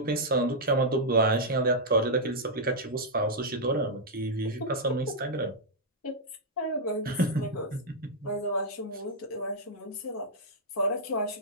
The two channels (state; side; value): normal; both; correlation -0.06